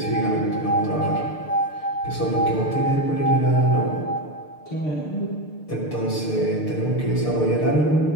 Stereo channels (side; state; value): right; late; 6.7 ms